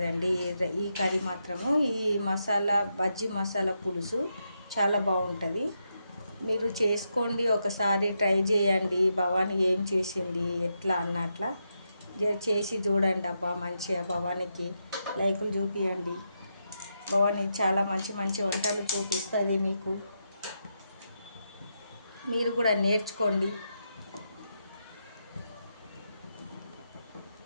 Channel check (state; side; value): inverted; both; correlation -0.84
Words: ఈ కర్రీ మాత్రము. ఈ మసాలా బజ్జీ మసాలా పులుసు చాలా బాగుంటుంది. మీరు చేసుకోండి, ఒకసారి ట్రై చేయండి. భవానీ ఏం చేసింది ఎట్లా అన్నట్లా చేసి చూడండి. అబ్బా మంచిగా భవానీకి లైకులు చూపియండి. భవానీ చాలా మంచి మంచి వంటలు చూపిస్తుంది మీకు. మీరు కూడా నేర్చుకోండి.